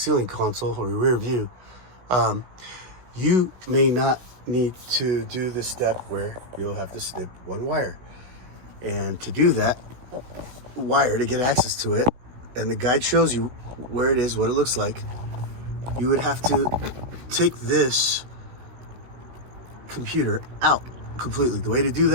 console or your rear view, you may not need to do the step where you'll have to snip one wire. And to do that wire, to get access to it, and the guide shows you where it is, what it looks like, you would have to take this computer out completely. The way to do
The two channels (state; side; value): late; left; 16 ms